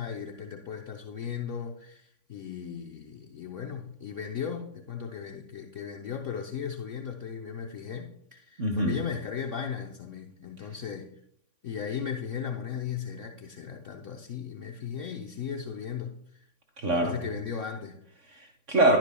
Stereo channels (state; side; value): late; left; 3.5 ms